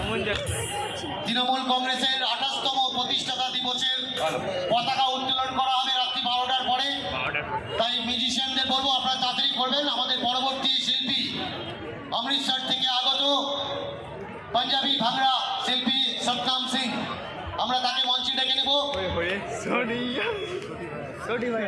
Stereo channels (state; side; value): identical; both; correlation 1.00